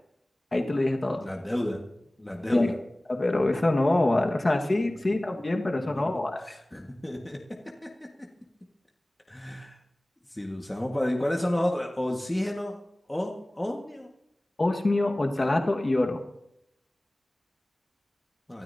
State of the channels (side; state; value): both; normal; correlation 0.98